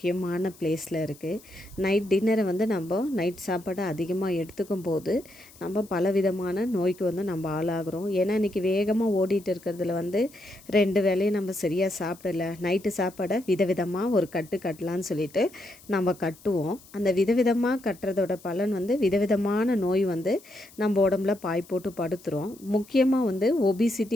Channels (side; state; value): left; noise; hiss, 24 dB below the sound